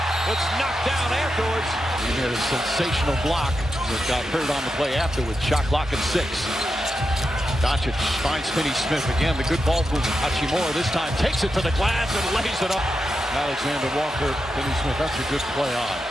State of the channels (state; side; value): normal; both; correlation 0.87